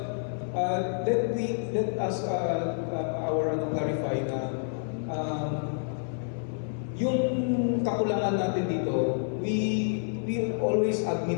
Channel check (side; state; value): right; silent; 59 dB below the other